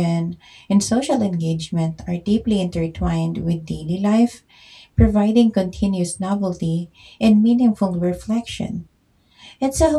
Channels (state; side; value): identical; both; correlation 1.00